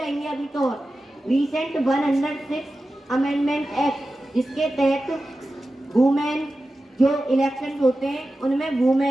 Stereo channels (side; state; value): both; normal; correlation 0.93